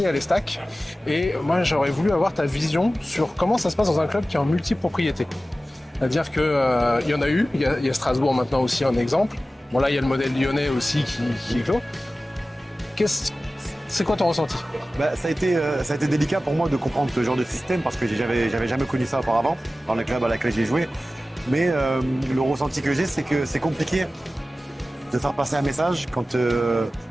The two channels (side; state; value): both; normal; correlation 0.96